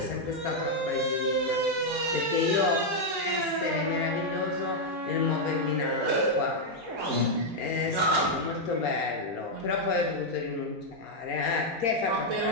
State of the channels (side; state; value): both; normal; correlation -0.01